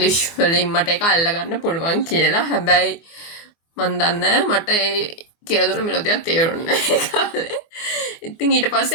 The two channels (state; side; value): late; right; 24 ms